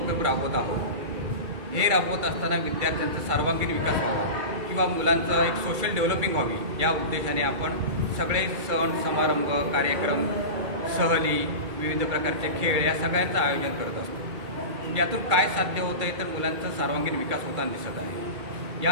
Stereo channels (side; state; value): left; late; 2.4 ms